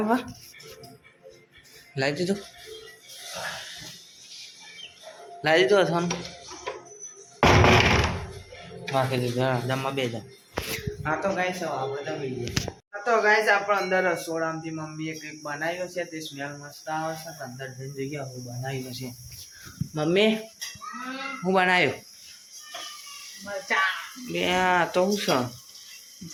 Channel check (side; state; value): both; identical; correlation 1.00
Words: લાવી દીધું અથાણું રાખી દીધું જમવા બે જા હા તો ગાઈસ આપણે જમી લઈએ હા તો ગાઈસ આપણે અંદર રસોડામાંથી મમ્મીએ કંઈક બનાવ્યો છે તે સ્મેલ મસ્ત આવે છે અંદર જઈને જોઈએ હું બનાવ્યું છે મમ્મી હું બનાવ્યું मरचा બે આ તો શું છે